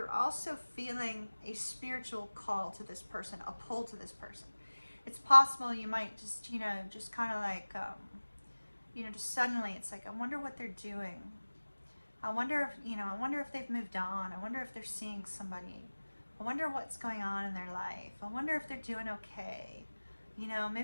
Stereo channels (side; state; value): both; inverted; correlation -1.00